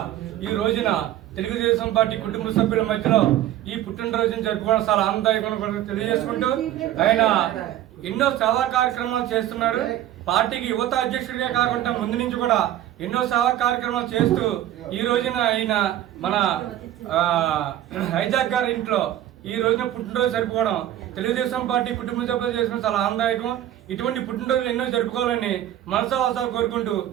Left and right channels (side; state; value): left; quieter; 12.7 dB